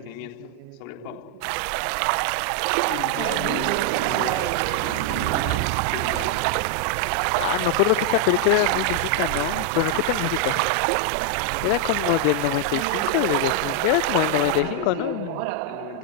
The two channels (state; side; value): different; both; correlation 0.00